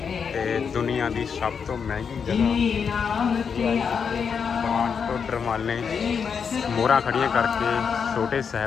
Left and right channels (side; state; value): right; quieter; 6.5 dB